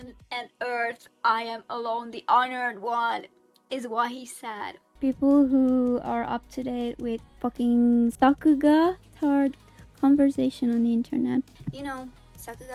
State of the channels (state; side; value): identical; both; correlation 1.00